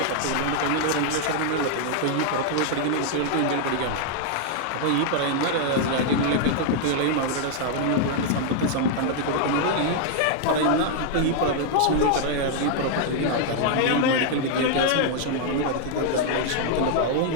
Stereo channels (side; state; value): both; different; correlation 0.00